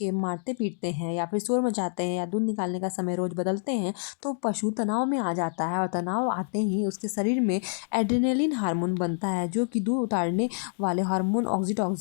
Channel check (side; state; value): right; silent; 58 dB below the other